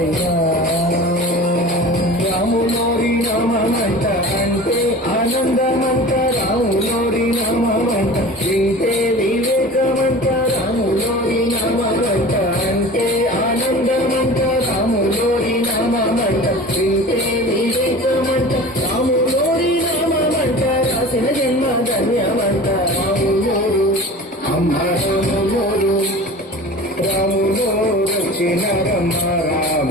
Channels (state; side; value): normal; both; correlation 0.38